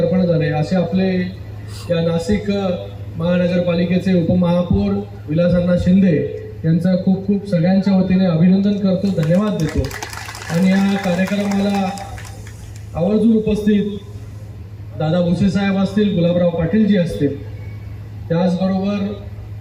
झाले, असे आपले या नाशिक महानगरपालिकेचे उपमहापौर विलासअण्णा शिंदे यांचं खूप खूप सगळ्यांच्या वतीने अभिनंदन करतो, धन्यवाद देतो। आणि या कार्यक्रमाला आवर्जून उपस्थित दादा भुसे साहेब असतील, गुलाबराव पाटीलजी असतील, त्याचबरोबर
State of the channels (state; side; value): identical; both; correlation 1.00